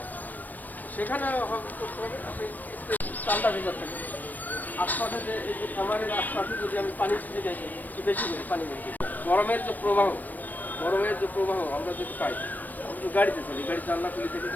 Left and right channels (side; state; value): right; late; 0.086 ms